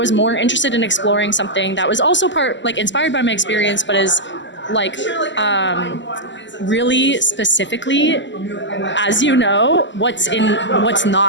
more interested in exploring something that was also inspired by my experience, but is like really specifically, as you know, what's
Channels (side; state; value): right; late; 0.54 ms